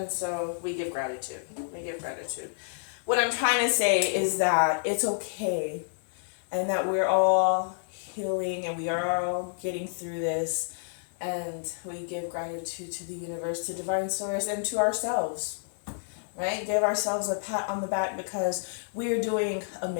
so we give gratitude. We give gratitude. What I'm trying to say is that it's okay and that we're all healing and we are all getting through this, and we give gratitude to the universe, to divine source, and to ourselves, right? Give ourselves a pat on the back because we are doing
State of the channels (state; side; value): silent; right; digital silence